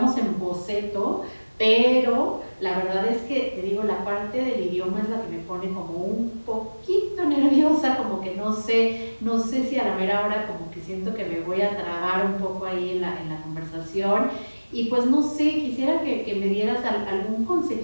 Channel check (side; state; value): both; inverted; correlation -1.00